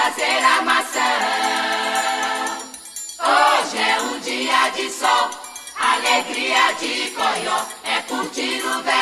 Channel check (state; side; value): identical; both; correlation 1.00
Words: armação. Hoje é um dia de sol, alegria de coió, é curtir o verão.